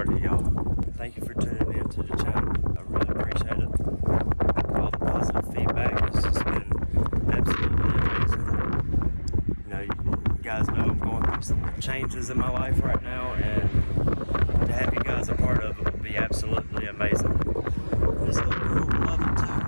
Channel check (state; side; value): inverted; both; correlation -1.00